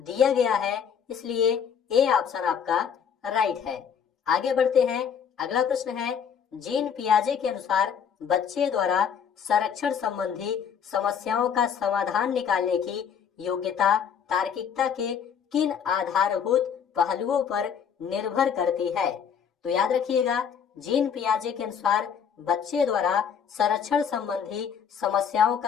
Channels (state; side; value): quieter; right; 7.5 dB